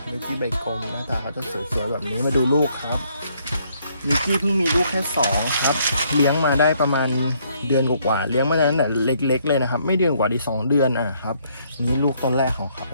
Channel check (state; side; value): inverted; both; correlation -0.69